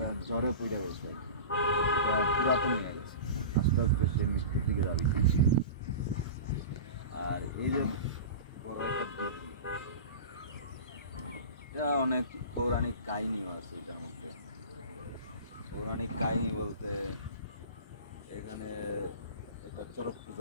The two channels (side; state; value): both; inverted; correlation -0.32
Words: জ্বরে পড়ে গেছে, এটা পুরাতন হয়ে গেছে, আস্তে আস্তে সে মৃত্যুর দিকে যাচ্ছে। আর এই যে বড় একটা দিঘি, এটা অনেক পৌরাণিক কাহিনীও আছে এটার মধ্যে। পৌরাণিক কাহিনী বলতে এখানে একটা চড়ক